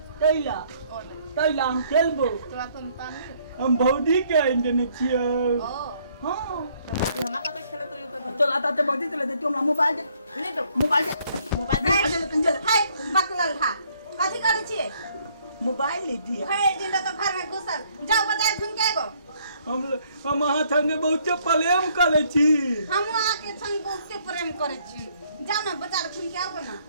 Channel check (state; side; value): inverted; both; correlation -0.65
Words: तैला तैला हम खेलबो हम भौजी के इंटरने छियो हां भौजी हमरा कत खेलत रहियो त चल आता ते भौजी चले तू हमरा मोबाइल दे नहीं दो मोबाइल दे कंजल हाय बकलल था कथि करे छिए मोबाइल ले दिया है दिन तो घर में घुसल जाओ बाजार घूम के आगो हम अहाँ संगे बहुत प्रेम करे छी हम आके संग बहुत प्रेम करे छी जाओ ना बाजार घूम के आओ ना